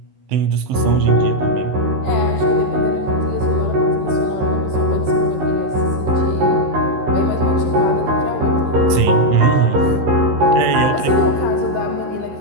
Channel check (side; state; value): left; late; 15 ms